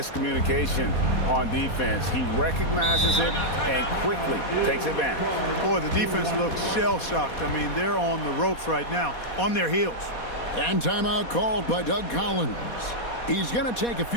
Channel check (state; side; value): late; right; 4.2 ms